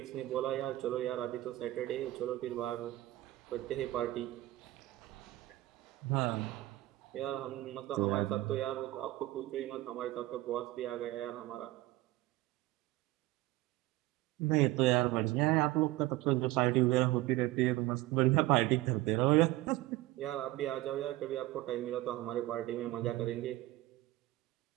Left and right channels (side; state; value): left; quieter; 17.4 dB